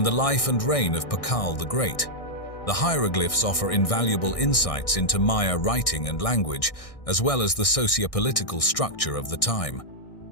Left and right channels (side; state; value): right; late; 1.6 ms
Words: the life and reign of Tikal the Great. The hieroglyphs offer invaluable insights into Maya writing and language, as well as the socio-political structure of the time.